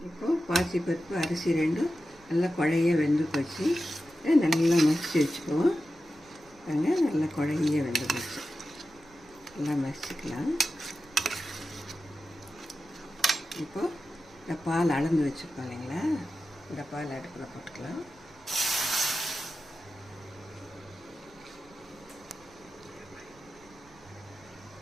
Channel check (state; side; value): noise; right; rumble, 27 dB below the sound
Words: இப்போது பாசிப்பருப்பு அரிசி ரெண்டும் நல்லா குழைய வெந்து போச்சு. நல்லா மசிச்சு வச்சுக்குவோம். நல்லா குழைய வெந்து போச்சு. நல்லா மசிச்சுக்கலாம். இப்போது இந்த பால் அளந்து வச்சுருப்போம் இல்லைங்களா, இந்த பால் அடுப்பில் போட்டுக்கலாம்.